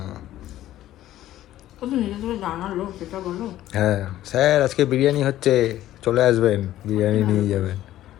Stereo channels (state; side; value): quieter; right; 13.6 dB